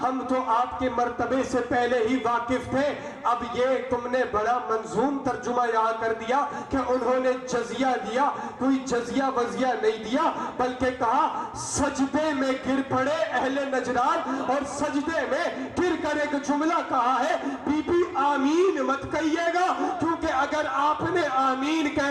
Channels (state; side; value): identical; both; correlation 1.00